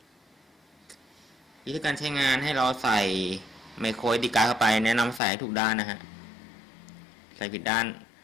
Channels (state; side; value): drops out; right; at 5.2 s